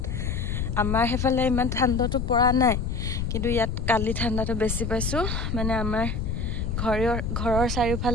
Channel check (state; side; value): noise; left; rumble, 2 dB below the sound